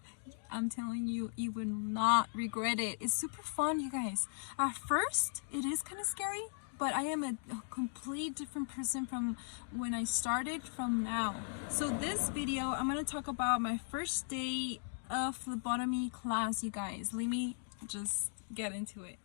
I'm telling you, you will not regret it. It's super fun, you guys. At first, it is kind of scary, but I am a complete different person from when I started from now. So this video, I'm going to talk about my first day of phlebotomy class, you guys. Let me just get into it.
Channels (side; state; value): right; silent; digital silence